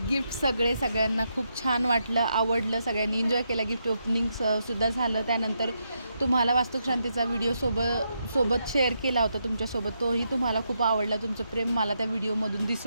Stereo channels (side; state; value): both; inverted; correlation -0.81